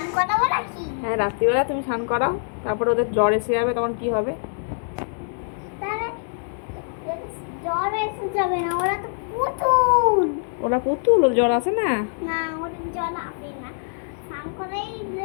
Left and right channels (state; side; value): silent; right; digital silence